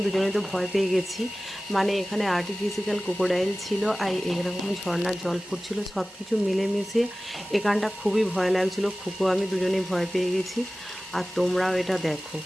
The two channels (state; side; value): normal; both; correlation 0.96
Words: দুজনে তো ভয় পেয়ে গেছি। মানে এখানে আর্টিফিশিয়াল ক্রোকোডাইল ছিল আর এরকম ঝর্ণার জল পড়ছিল, সব কিছু মিলেমিশে এখানটা খুবই ভয় লাগছিল। খুকু আমি দুজনেই ভয় পেয়ে গেছি। আর তোমরাও এটা দেখো।